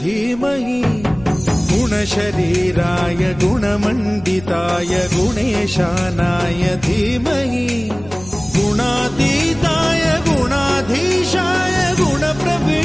धीमहि गुणशरीराय गुणमण्डिताय गुणेशानाय धीमहि गुणातीताय गुणाधीशाय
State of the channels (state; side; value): noise; left; rumble, 18 dB below the sound